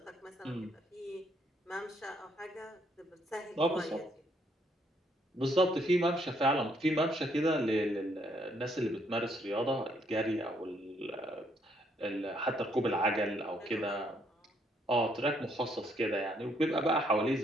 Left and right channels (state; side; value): normal; both; correlation 0.70